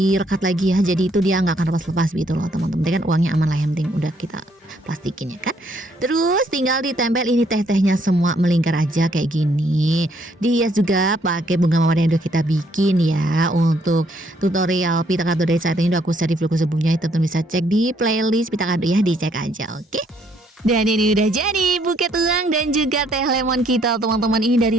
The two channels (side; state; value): both; normal; correlation 0.68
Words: rekat lagi ya, jadi itu dia nggak akan lepas-lepas gitu loh teman-teman. Kan uangnya aman lah, yang penting udah kita plastikin ya kan. Terus tinggal ditempel ini teh-tehnya semua melingkar aja kayak gini. Dihias juga pakai bunga mawar yang udah kita bikin ya. Untuk tutorial pita kado dari saat ini udah aku share di vlogku sebelumnya, teman-teman bisa cek di playlist pita kado ya, dicek aja oke. Dan ini udah jadi buket uang dan juga teh lemon kita teman-teman. Ini